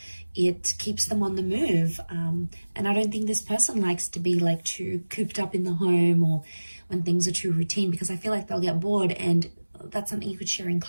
It keeps them on the move. And I don't think this person likes to be like too cooped up in the home, or when things are too routine, because I feel like they'll get bored, and that's something you could share in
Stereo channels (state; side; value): inverted; both; correlation -1.00